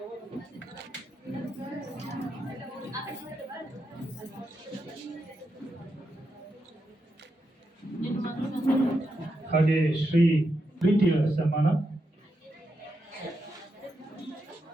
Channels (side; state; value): both; normal; correlation 0.85